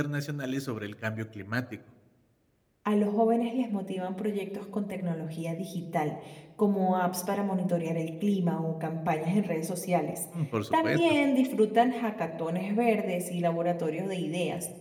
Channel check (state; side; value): identical; both; correlation 1.00